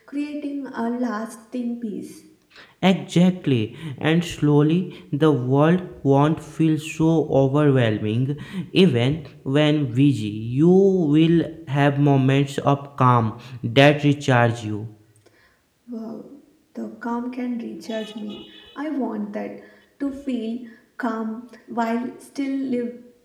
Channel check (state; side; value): identical; both; correlation 1.00